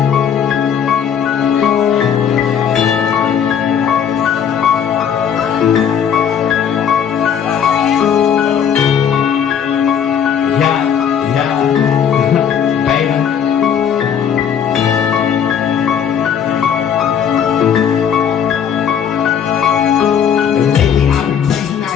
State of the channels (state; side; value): quieter; right; 8.1 dB